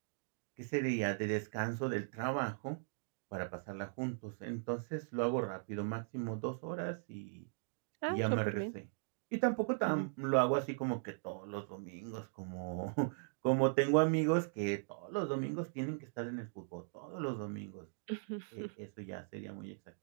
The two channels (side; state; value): left; silent; digital silence